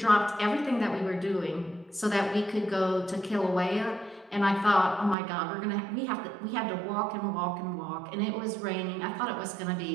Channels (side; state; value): left; drops out; at 5.2 s